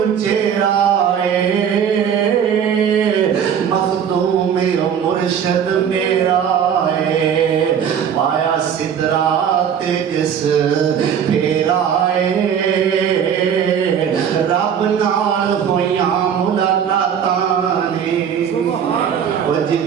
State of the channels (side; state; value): left; quieter; 8.2 dB